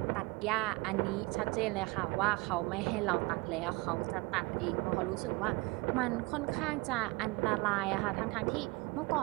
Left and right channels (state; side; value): quieter; left; 24.9 dB